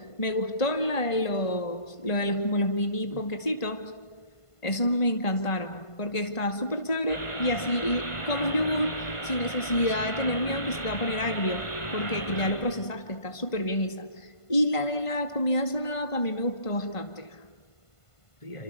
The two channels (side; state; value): right; late; 1.5 ms